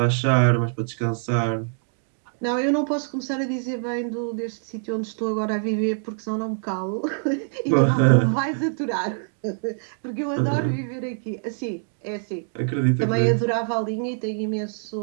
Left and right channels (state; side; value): silent; left; digital silence